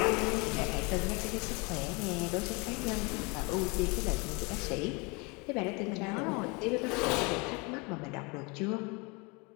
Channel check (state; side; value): quieter; right; 28.9 dB